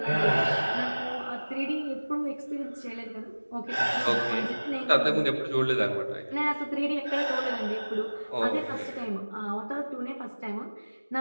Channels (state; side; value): inverted; both; correlation -1.00